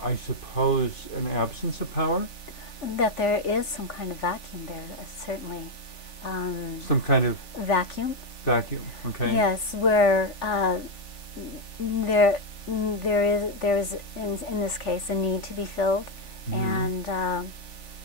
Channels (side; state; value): right; late; 3.4 ms